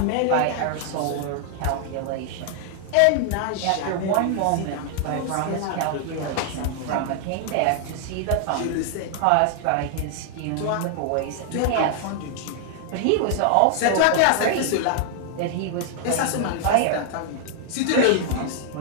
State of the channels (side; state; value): both; different; correlation 0.00